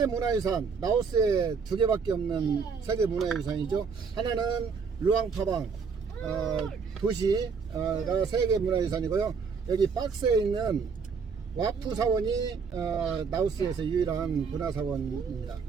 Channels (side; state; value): left; quieter; 5.5 dB